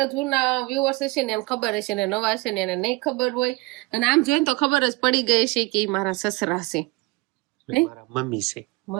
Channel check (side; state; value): left; quieter; 23.6 dB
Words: જૂના વ્યુઅર્સ હશે ને એમ ખબર હશે ને નવા હશે ને એને નહીં ખબર હોય અને આમ જોઈને તો ખબર જ પડી ગઈ છે કે ઈ મારા સસરા છે મારા મમ્મી છે.